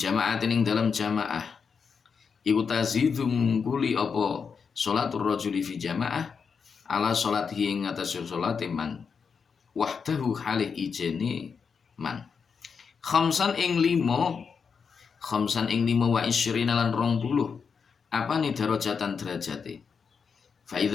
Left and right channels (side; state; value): right; quieter; 5.9 dB